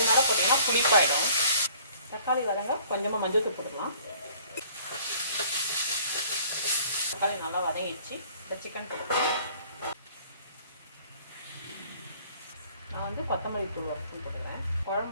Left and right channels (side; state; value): both; inverted; correlation -0.55